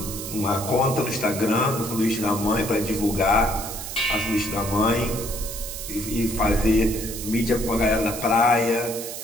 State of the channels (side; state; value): right; noise; hiss, 8 dB below the sound